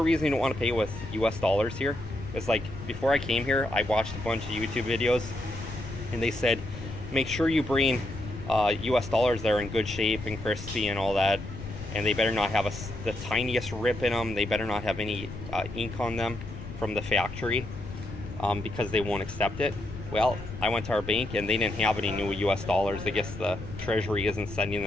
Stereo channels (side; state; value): left; noise; rumble, 11 dB below the sound